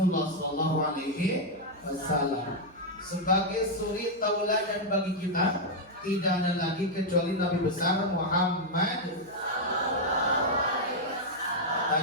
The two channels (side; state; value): right; noise; hum, 27 dB below the sound